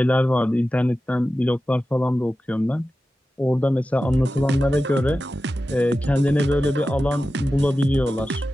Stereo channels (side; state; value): both; normal; correlation 0.94